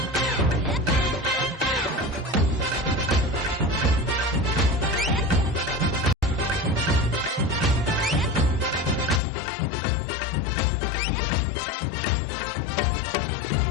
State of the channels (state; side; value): drops out; right; at 9.2 s